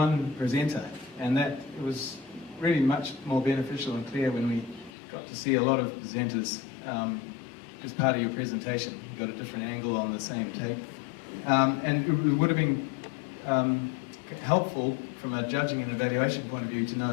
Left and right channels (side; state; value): right; drops out; at 4.9 s